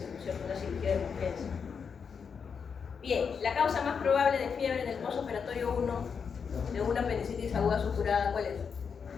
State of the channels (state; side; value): quieter; right; 6.2 dB